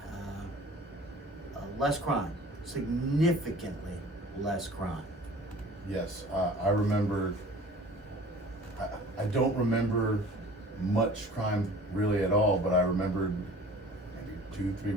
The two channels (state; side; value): normal; both; correlation 0.46